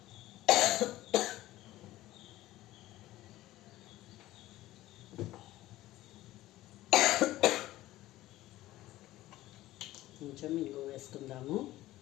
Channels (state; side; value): quieter; right; 16.1 dB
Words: కొంచెం ఇంగు వేసుకుందాము.